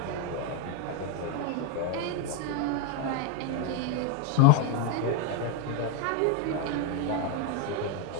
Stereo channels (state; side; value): different; both; correlation 0.02